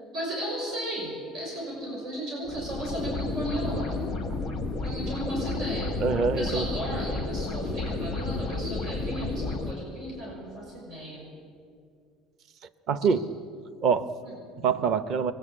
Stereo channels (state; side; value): normal; both; correlation 0.46